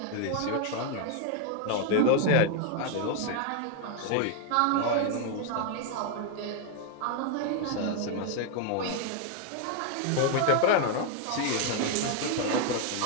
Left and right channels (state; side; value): different; both; correlation 0.00